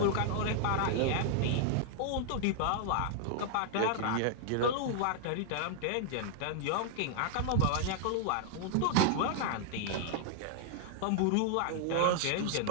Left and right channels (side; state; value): both; different; correlation -0.01